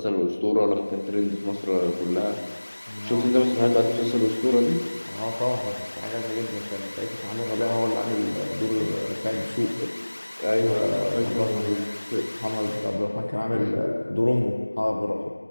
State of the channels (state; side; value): inverted; both; correlation -1.00